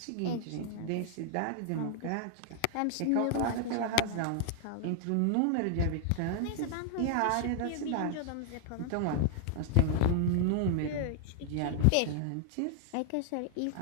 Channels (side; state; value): both; different; correlation 0.00